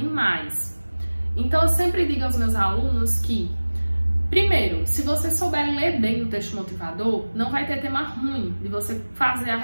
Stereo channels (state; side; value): inverted; both; correlation -1.00